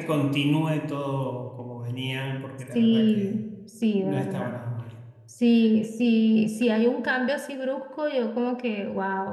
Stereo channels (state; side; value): identical; both; correlation 1.00